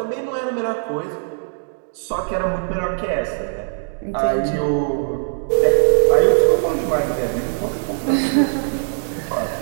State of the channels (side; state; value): left; silent; 65 dB below the other